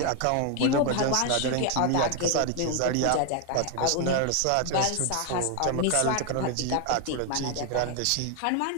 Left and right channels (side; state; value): both; different; correlation 0.01